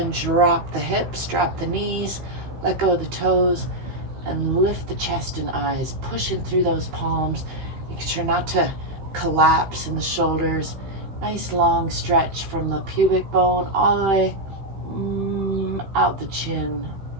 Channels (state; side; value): late; left; 15 ms